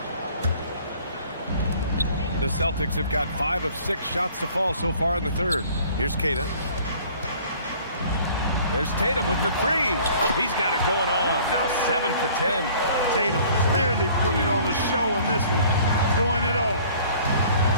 The Celtics have got 5 of 6 shots to fall so far in the third. Here's Keita. There's Tatum with the 3. He's got it going on. Now 7 for 10. Tatum clearly putting on the show in this one. Doing it all.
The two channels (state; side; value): inverted; both; correlation -0.53